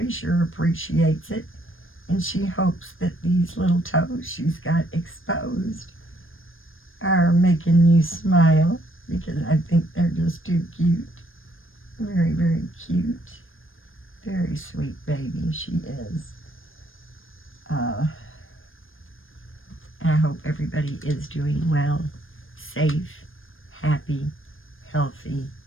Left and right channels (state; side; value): late; right; 0.59 ms